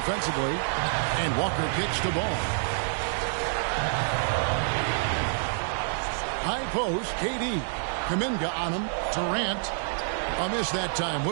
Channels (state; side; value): silent; left; digital silence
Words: and Walker kicks the ball. High post, KD. Kuminga on him. Durant. A miss that time.